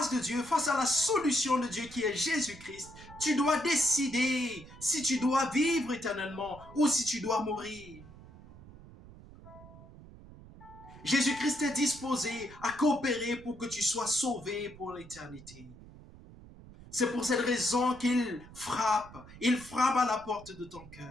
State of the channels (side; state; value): right; noise; rumble, 19 dB below the sound